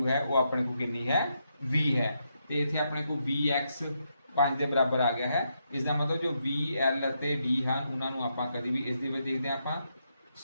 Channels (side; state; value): both; inverted; correlation -0.81